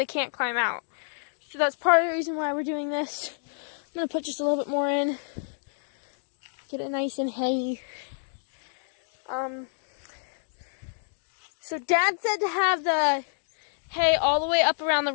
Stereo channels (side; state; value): right; silent; digital silence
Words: can't climb out. So that's part of the reason why we're doing this. I'm going to put just a little bit more in. Get it nice and hay. So Dad said to have the hay all the way up around the